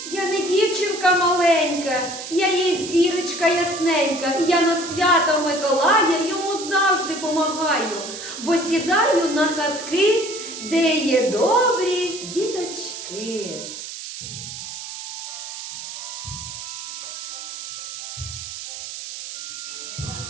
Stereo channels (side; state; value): right; noise; hiss, 9 dB below the sound